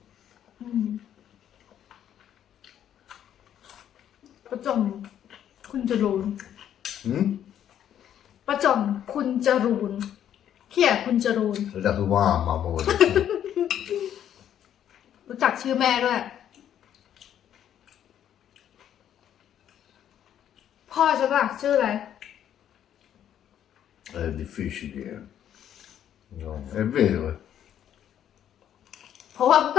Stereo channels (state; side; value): quieter; right; 10.2 dB